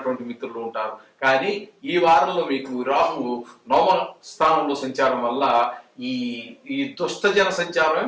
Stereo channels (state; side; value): identical; both; correlation 1.00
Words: మిత్రులు ఉంటారు. కానీ ఈ వారంలో మీకు రాహు 9వ స్థానంలో సంచారం వల్ల ఈ దుష్టజన సంచారమే